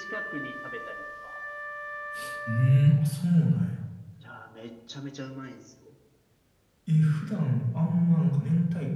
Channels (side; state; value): both; identical; correlation 1.00